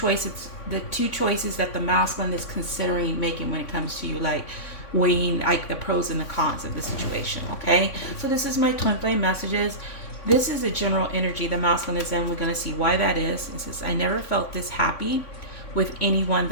that the masculine is considering making when it comes to you, like weighing like the pros and the cons of the situation. Okay, so this is my twin flame messages. This is a general energy the masculine is in. We're going to see why that is. It says, I never felt this happy with anyone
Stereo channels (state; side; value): late; right; 3.5 ms